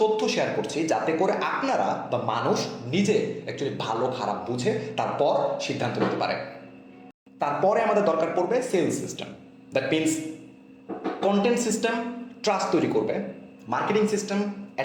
তথ্য শেয়ার করছি যাতে করে আপনারা বা মানুষ নিজে অ্যাকচুয়ালি ভালো খারাপ বুঝে তারপর সিদ্ধান্ত নিতে পারে। তারপরে আমাদের দরকার পড়বে sales system. That means content system trust তৈরি করবে, মার্কেটিং সিস্টেম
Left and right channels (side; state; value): both; identical; correlation 1.00